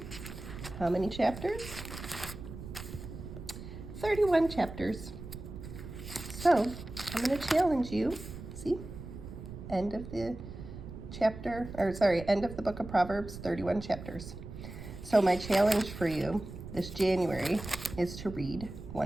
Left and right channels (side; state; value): right; noise; rumble, 11 dB below the sound